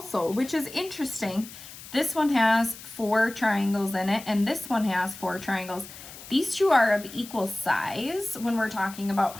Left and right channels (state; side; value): noise; left; hiss, 15 dB below the sound